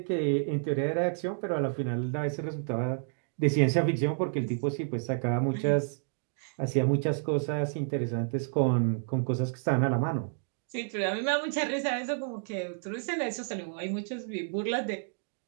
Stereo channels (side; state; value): left; silent; digital silence